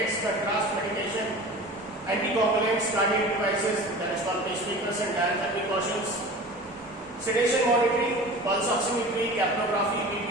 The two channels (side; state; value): both; normal; correlation 0.38